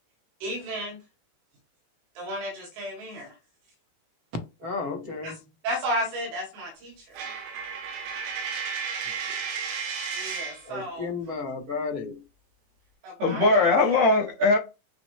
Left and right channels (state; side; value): late; left; 18 ms